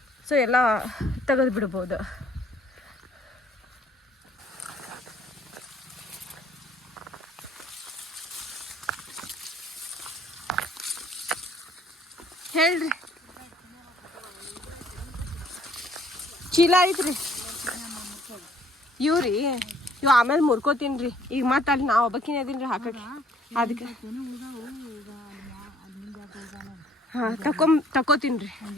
ಸೊ ಎಲ್ಲ ತೆಗೆದು ಬಿಡ್ಬೋದು. ಹೇಳ್ರಿ, ಚೀಲ ಐತ್ರಿ ಇವ್ರಿ. ಇವು ಆಮೇಲೆ ಮುರ್ಕೋತೀನಿ ರೀ. ಈಗ ಮತ್ತೆ ಅಲ್ಲಿ ನಾವು ಒಬ್ಬಕಿನ ಅದೀನಿ ರೀ ಹಾಕಕ್ಕೆ. ಅದಕ್ಕೆ ಹಾಂ ತಕೋತೀನಿ ರೀ.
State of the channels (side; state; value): both; normal; correlation 0.61